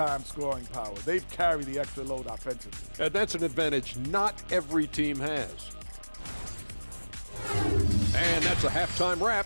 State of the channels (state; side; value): inverted; both; correlation -1.00